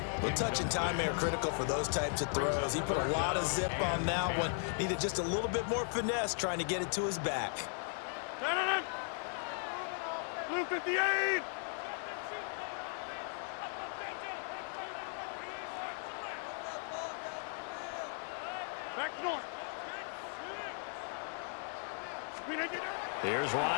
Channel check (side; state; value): right; silent; 53 dB below the other